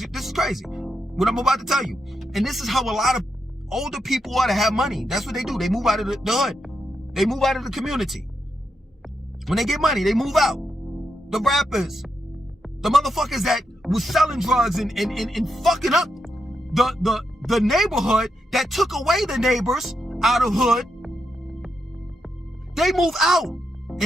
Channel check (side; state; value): both; normal; correlation 0.83